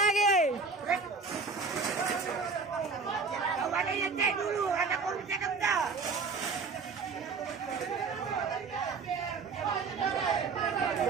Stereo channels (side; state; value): left; quieter; 4.6 dB